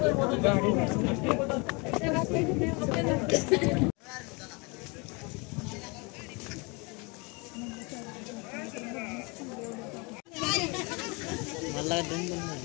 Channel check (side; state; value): right; quieter; 29.2 dB